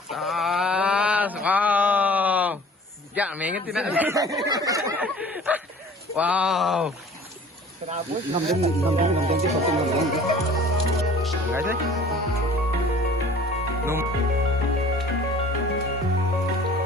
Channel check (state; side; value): normal; both; correlation 0.48